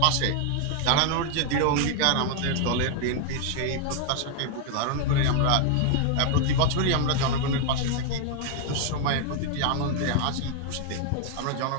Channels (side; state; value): both; different; correlation 0.00